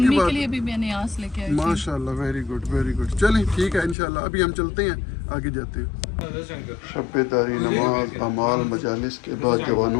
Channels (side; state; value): right; drops out; at 4.0 s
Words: کے کے بعد لیے بھی میں نے آس لے کے آئی تھی۔ ماشاءاللہ ویری گڈ، چلیں ٹھیک ہے انشاءاللہ، ابھی ہم چلتے ہیں، آگے جاتے ہیں۔ شب داری، نماز، اعمال، مجالس کے بعد